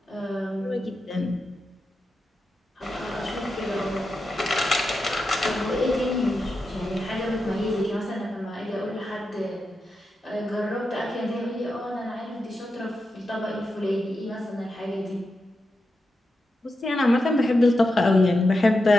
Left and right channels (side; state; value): both; normal; correlation 0.89